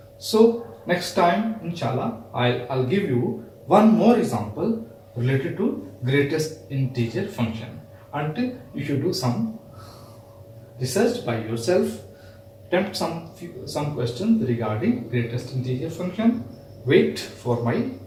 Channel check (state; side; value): identical; both; correlation 1.00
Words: So next time, inshallah, I'll give you one more example related to greatest integer function. Until you should do some research by yourself, attempt some questions regarding greatest integer function. Wait for my